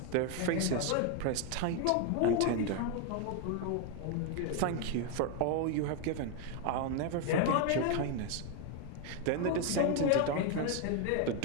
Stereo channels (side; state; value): both; different; correlation 0.01